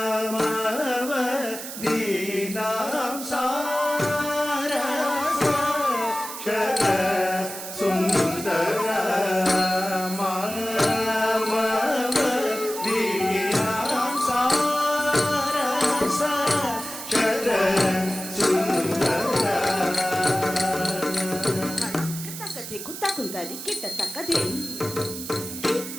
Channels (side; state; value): right; noise; hiss, 9 dB below the sound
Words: ದೀನಾಂ ಸಾರಸ ಶರ ಸುಂದರ ಮಾಮವ ದೀನಾಂ ಸಾರಸ ಶರ ಸುಂದರ ಕುತ್ತ ಕುಂತದಿ ಕಿಟ್ಟ ತಕ್ಕದೆ